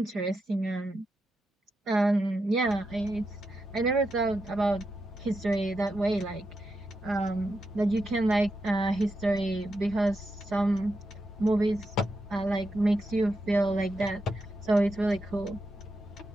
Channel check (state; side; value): normal; both; correlation 0.86